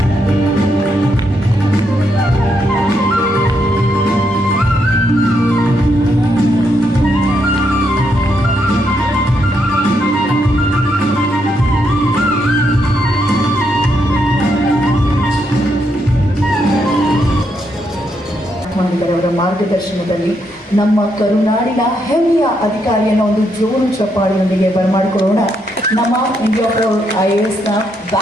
ಅವರ ಮಾರ್ಗದರ್ಶನದಲ್ಲಿ ನಮ್ಮ ಕರುನಾಡಿನ ಹೆಮ್ಮೆಯ ಅಧಿಕಾರಿಯನ್ನು ಒಂದು ಜೋರು ಚಪ್ಪಾಳಿಯೊಂದಿಗೆ ಬರಮಾಡಿಕೊಳ್ಳೋಣ. ನಮ್ಮ ಇಂಡಿಯಾ ಪ್ರೌಡ್ IASನ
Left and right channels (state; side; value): normal; both; correlation 0.78